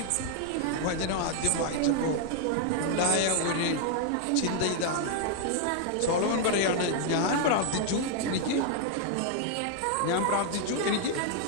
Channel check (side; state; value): both; different; correlation 0.00